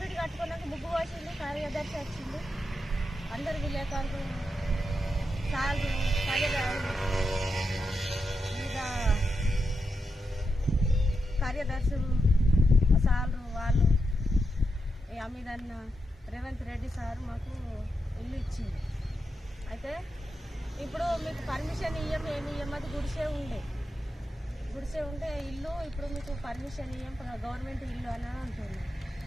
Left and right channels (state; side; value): normal; both; correlation 0.86